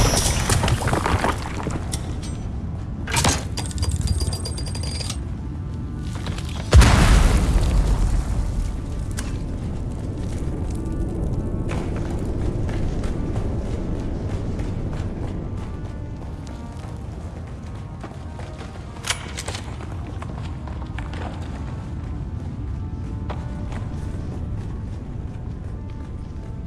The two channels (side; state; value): both; identical; correlation 1.00